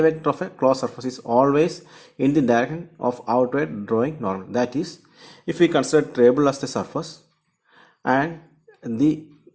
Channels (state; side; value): identical; both; correlation 1.00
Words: vector of a closed surface is always in the direction of outward drawing normal. That is, if we consider table as the surface and the